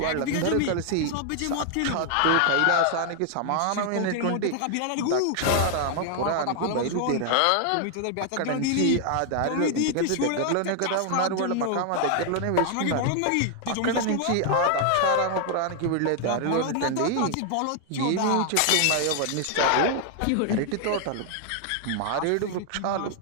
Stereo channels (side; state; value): both; different; correlation 0.00